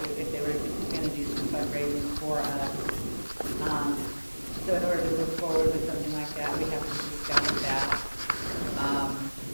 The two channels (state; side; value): inverted; both; correlation -1.00